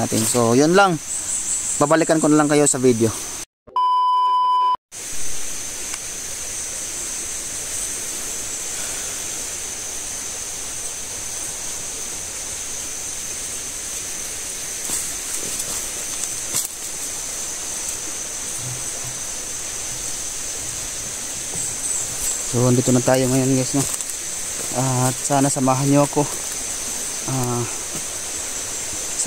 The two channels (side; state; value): both; identical; correlation 1.00